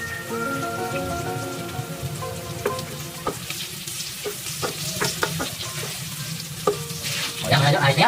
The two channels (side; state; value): both; identical; correlation 1.00